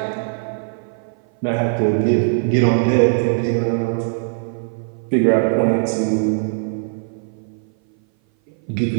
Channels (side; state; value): left; silent; 58 dB below the other